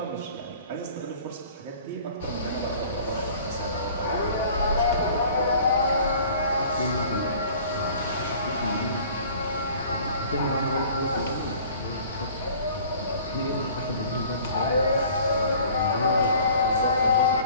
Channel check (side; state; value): both; inverted; correlation -0.49